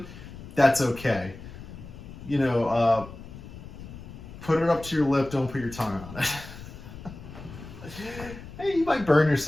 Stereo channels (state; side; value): noise; left; rumble, 14 dB below the sound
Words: that's okay. You know, put it up to your lip, don't put your tongue on it. Hey, you might burn